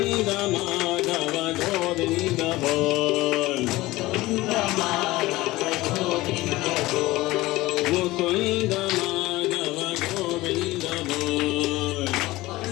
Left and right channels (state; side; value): quieter; right; 18.8 dB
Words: माधव गोविंद बोल मुकुंद माधव गोविंद बोल